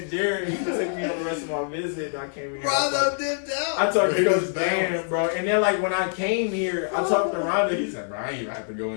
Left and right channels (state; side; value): silent; right; 62 dB below the other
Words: Jerry. He took me on the rest of my visit. And I came here. I talked to Coach Dan, bro. And then, like, when I came here, I talked to Rhonda. He's like, bro, I ain't even have to go